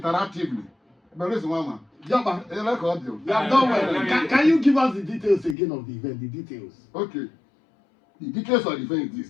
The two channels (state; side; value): drops out; right; at 5.6 s